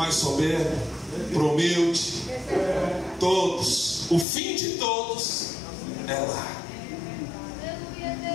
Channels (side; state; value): right; drops out; at 4.2 s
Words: soberbo, para o humilde, todos. O fim de todos é lá.